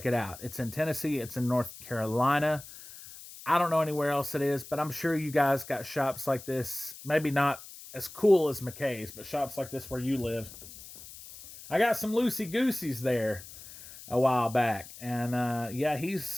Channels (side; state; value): left; noise; hiss, 16 dB below the sound